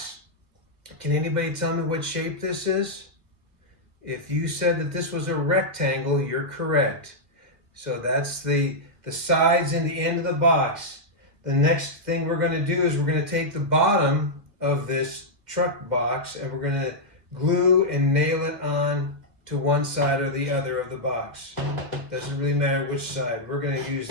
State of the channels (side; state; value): left; late; 2.1 ms